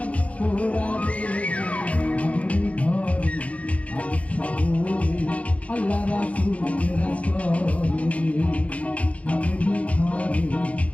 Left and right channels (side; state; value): right; late; 0.065 ms